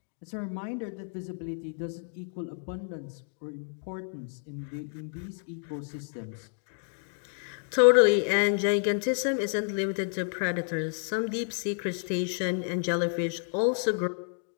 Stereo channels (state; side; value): silent; right; 58 dB below the other